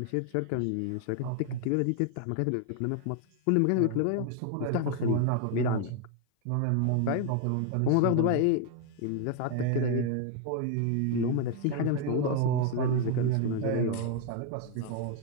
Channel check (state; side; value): different; both; correlation 0.00